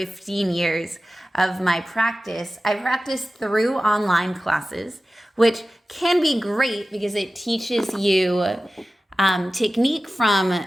years of my practice, I practiced through online classes, which can be great because it teaches you technique from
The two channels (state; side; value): normal; both; correlation 0.95